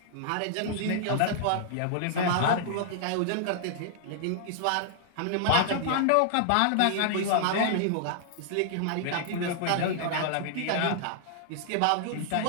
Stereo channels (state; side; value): different; both; correlation -0.01